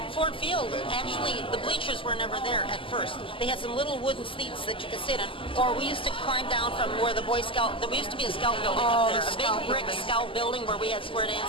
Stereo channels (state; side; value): late; right; 0.25 ms